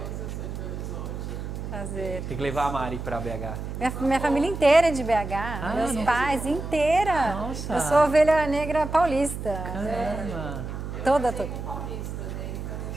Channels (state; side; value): noise; right; hum, 7 dB below the sound